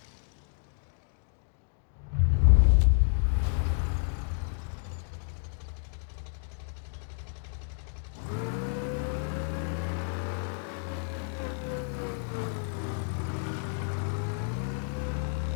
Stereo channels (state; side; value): silent; right; 57 dB below the other